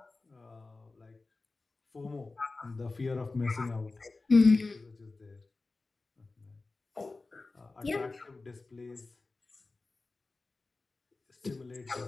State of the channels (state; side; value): quieter; right; 3.5 dB